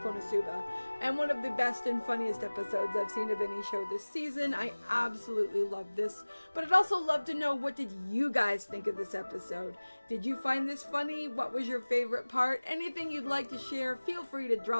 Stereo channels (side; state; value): both; inverted; correlation -1.00